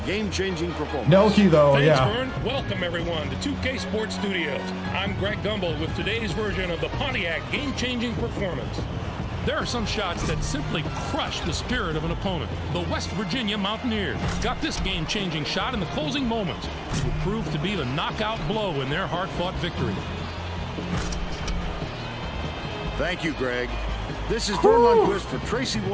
game-changing performance. Nelke, though, Thanks, yeah. Vern. Welcome, everyone, to 2K Sports Studios. I'm Greg Gumbel with today's version of the Pontiac game-changing performance. There are some shots that simply crush the spirit of an opponent. The West Virginia Mountaineers got this game-changing shot in the closing moments. It would prove to be the knockout blow in their hard-fought victory. Thank you, Greg. This is Vern Lundquist for Tracy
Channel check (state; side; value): identical; both; correlation 1.00